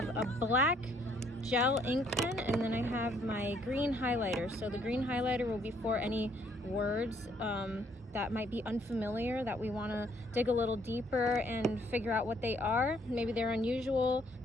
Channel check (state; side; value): normal; both; correlation 0.67